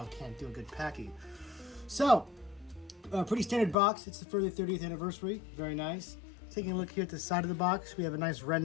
can't do a good Pachy. So, pretty standard box. It's for the 30th anniversary. Very nice. Taking a look here at the side of the box, we have a nice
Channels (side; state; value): right; drops out; at 3.8 s